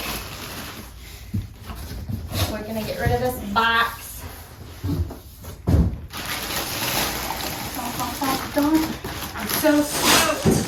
We're gonna get rid of this box. I'm so stoked.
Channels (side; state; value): both; identical; correlation 1.00